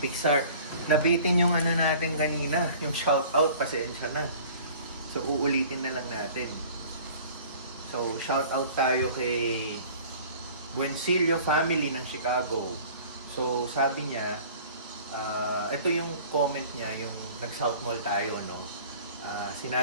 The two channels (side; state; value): both; inverted; correlation -0.47